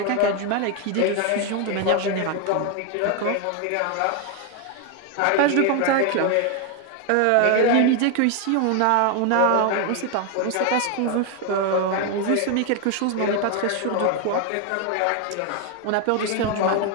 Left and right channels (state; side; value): different; both; correlation 0.01